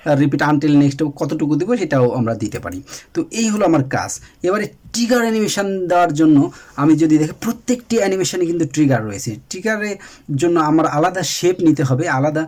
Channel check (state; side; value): identical; both; correlation 1.00